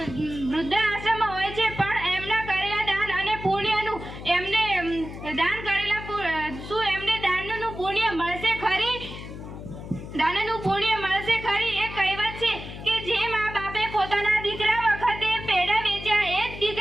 છે, પણ એમના કરેલા દાન અને પુણ્યનું એમને દાન દાદાનું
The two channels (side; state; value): left; noise; hum, 11 dB below the sound